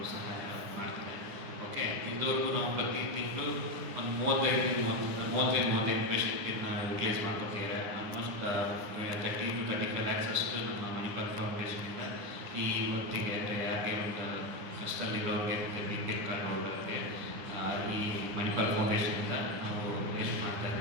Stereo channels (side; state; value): left; late; 10 ms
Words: ಸಹಾಯ ಮಾಡ್ತಾರೆ. ಓಕೆ, ಇದುವರೆಗೂ ನಾವು ಪ್ರತಿ ತಿಂಗಳು ಒಂದು 35 ಪೇಷಂಟನ್ನು ರಿಪ್ಲೇಸ್ ಮಾಡ್ಕೊತೀವಿ. ಆಲ್ಮೋಸ್ಟ್ 30 to 35 lakhs ಅಷ್ಟು ನಮ್ಮ ಮಣಿಪಾಲ್ ಫೌಂಡೇಶನಿಂದ ಈ ಹೊತ್ತಿಗೆ ಯಾರಿಗೆ ಒಂದು ಕಷ್ಟದಲ್ಲಿರೋರಿಗೆ ಮತ್ತು ಬಿ.ಪಿ. ಕಾರ್ಡ್ಗೆ ಈ ಮಣಿಪಾಲ್ ಫೌಂಡೇಶನಿಂದ ನಾವು ವೇಸ್ಟ್ ಮಾಡ್ತಾ